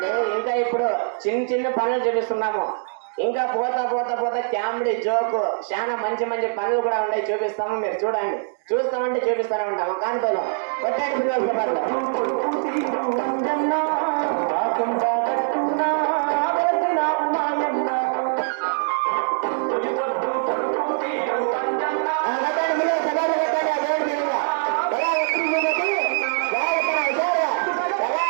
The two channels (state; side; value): silent; left; digital silence